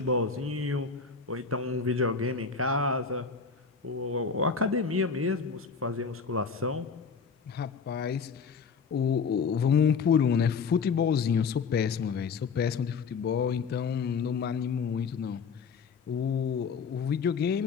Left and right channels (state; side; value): quieter; right; 5.5 dB